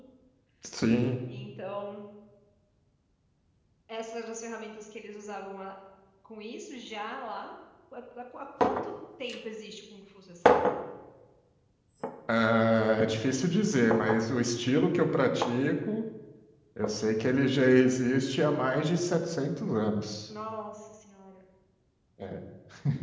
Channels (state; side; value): identical; both; correlation 1.00